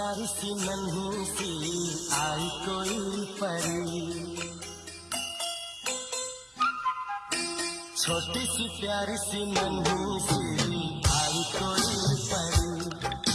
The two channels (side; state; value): both; identical; correlation 1.00